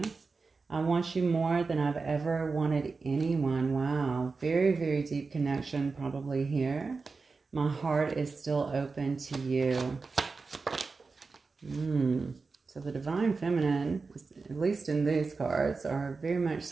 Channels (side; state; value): left; quieter; 4.3 dB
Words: I want you more than I've ever wanted anyone. Wow. Very, very deep connection probably here. My heart is still open to you. So the Divine Feminine, at least in these cards, are very much